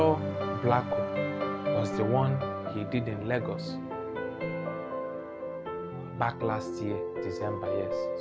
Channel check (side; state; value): both; identical; correlation 1.00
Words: Blacko was the one he did in Lagos. Back last year, December,